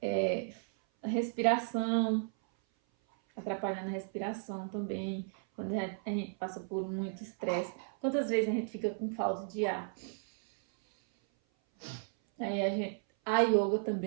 A respiração, atrapalhando a respiração também, quando a gente passa por muito estresse. Quantas vezes a gente fica com falta de ar? Aí a yoga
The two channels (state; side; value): silent; left; 55 dB below the other